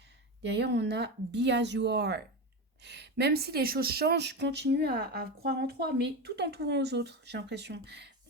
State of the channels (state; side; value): normal; both; correlation 0.19